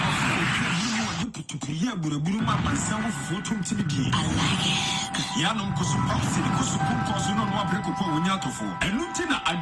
Yanum Kusupausi, Kusupos, no Wabreko, Winyatofo, and Lieutenant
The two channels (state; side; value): identical; both; correlation 1.00